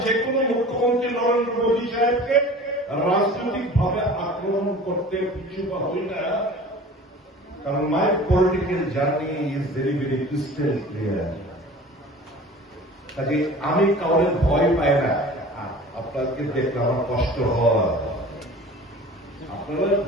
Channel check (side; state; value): both; normal; correlation 0.42